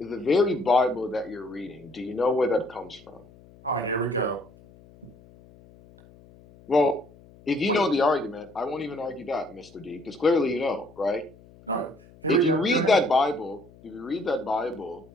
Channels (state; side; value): noise; left; hum, 24 dB below the sound